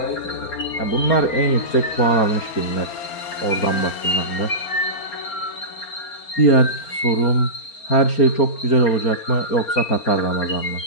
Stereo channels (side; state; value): right; late; 4.3 ms